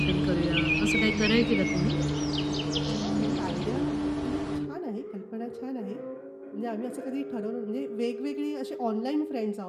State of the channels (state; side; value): identical; both; correlation 1.00